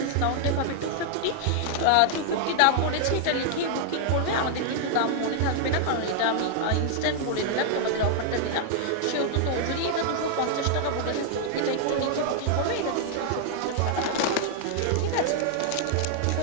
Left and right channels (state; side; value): different; both; correlation 0.00